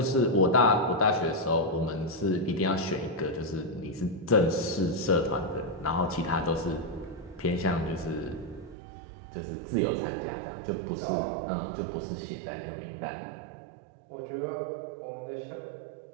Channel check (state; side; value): drops out; left; at 8.8 s